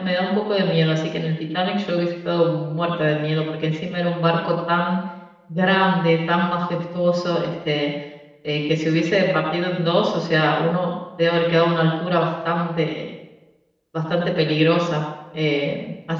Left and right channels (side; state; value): both; identical; correlation 1.00